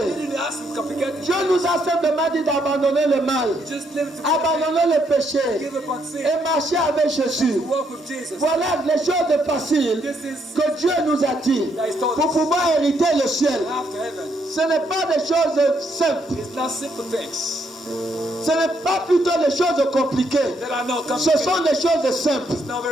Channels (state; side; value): normal; both; correlation 0.74